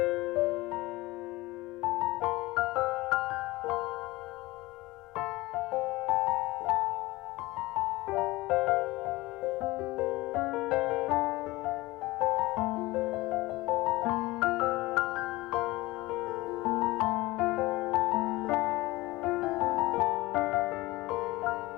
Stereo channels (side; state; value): right; quieter; 20.3 dB